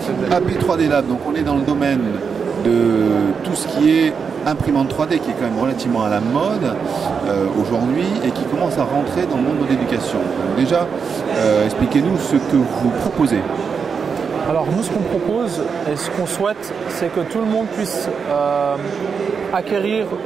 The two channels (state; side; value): quieter; left; 6.0 dB